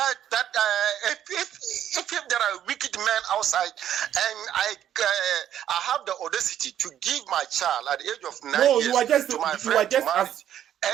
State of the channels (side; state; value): left; quieter; 10.7 dB